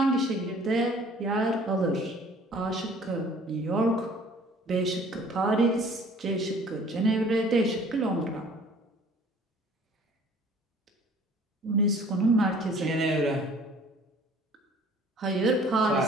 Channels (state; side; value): normal; both; correlation 0.52